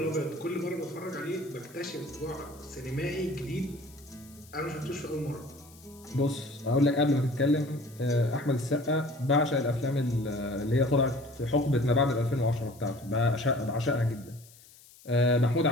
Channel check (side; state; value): left; noise; hiss, 24 dB below the sound